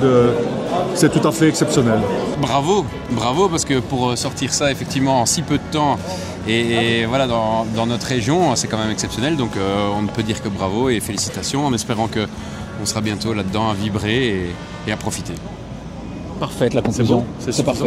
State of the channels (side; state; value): both; identical; correlation 1.00